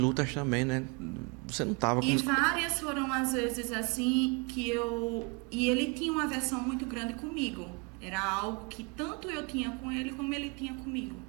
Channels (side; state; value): left; quieter; 32.0 dB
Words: também, né? Você não tava com... E várias foram às vezes assim que e ele tinha uma aversão muito grande comigo. Era algo que tanto eu tinha com ele como ele tinha comigo.